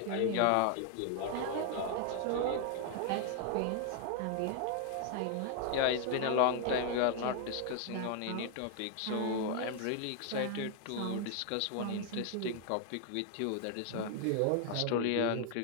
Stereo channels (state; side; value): different; both; correlation 0.00